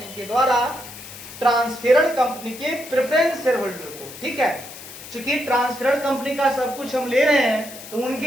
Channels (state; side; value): noise; left; hiss, 14 dB below the sound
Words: के द्वारा ट्रांसफरर कंपनी के प्रेफरेंस शेयर होल्डर को, ठीक है। चूंकि ट्रांसफरर कंपनी का सब कुछ हम ले रहे हैं तो